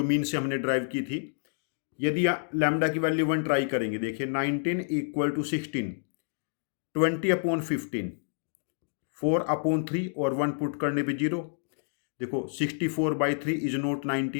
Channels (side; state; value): right; silent; digital silence